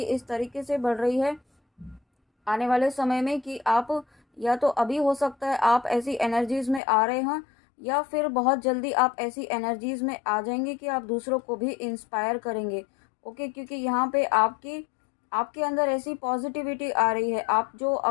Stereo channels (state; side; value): drops out; right; at 6.8 s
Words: इस तरीके से बढ़ रही है आने वाले समय में कि आप या तो अभी हो सकता है आप ऐसी एनर्जीज में आ रहे हैं या फिर बहुत जल्दी आप ऐसी एनर्जीज में आ जाएंगे कि आप दूसरों को भी इंस्पायर करेंगे। ओके, क्योंकि यहाँ पे आपकी आपके अंदर ऐसी पॉजिटिविटी आ रही है। आप जो